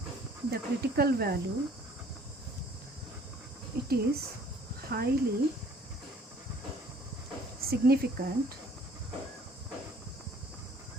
the critical value. It is highly significant.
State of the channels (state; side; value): normal; both; correlation 0.56